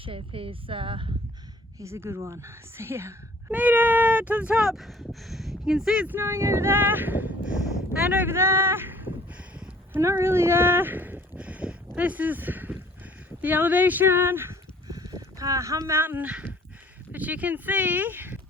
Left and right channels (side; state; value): both; normal; correlation 0.55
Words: is a good one. So yeah, made it to the top. You can see it's snowing over there and over there, but not really there. This is the elevation, Hump Mountain, but you can see